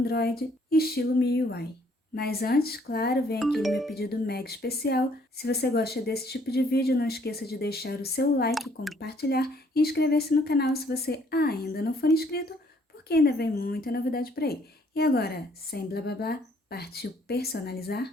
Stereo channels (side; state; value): both; normal; correlation 0.64